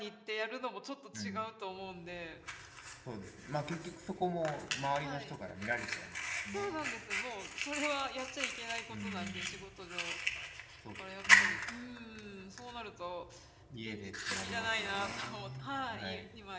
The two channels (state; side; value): identical; both; correlation 1.00